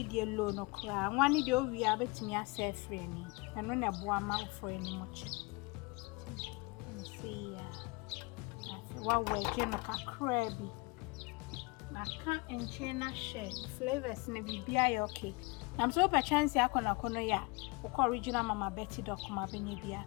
your loan or cry. One day we are betting yourself friendly, and on a boama for any much. See, what way can a crabby? I can't and chain share flavors in a BBI okay. I'm so by chance I can ya, or original Mamma Betty Doc, my benny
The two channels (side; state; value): right; quieter; 27.1 dB